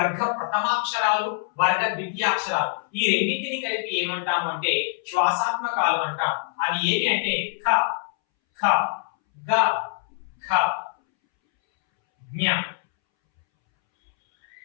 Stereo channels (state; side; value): silent; right; 62 dB below the other